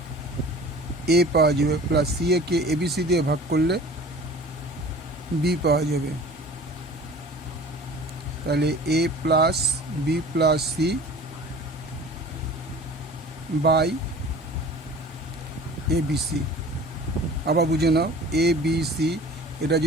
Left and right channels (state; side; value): normal; both; correlation 0.43